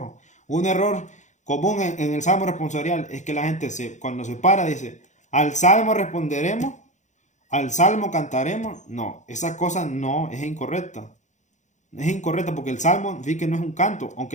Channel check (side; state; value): right; late; 0.35 ms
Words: Un error común en el salmo responsorial es que la gente cuando se para dice, al salmo responderemos, al salmo cantaremos. No, esa cosa no es incorrecta. Es incorrecta porque el salmo sí que no es un canto,